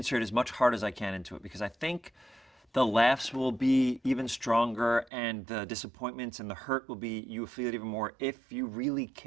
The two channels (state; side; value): drops out; left; at 5.1 s